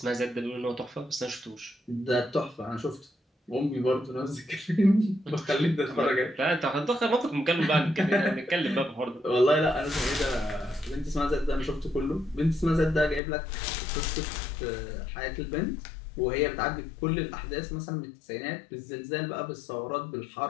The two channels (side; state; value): right; drops out; at 13.2 s